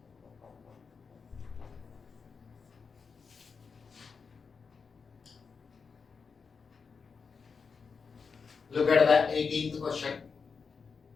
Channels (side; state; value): right; quieter; 5.4 dB